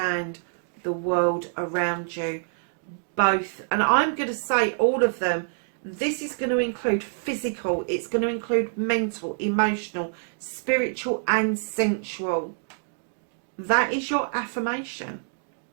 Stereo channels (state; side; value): silent; left; digital silence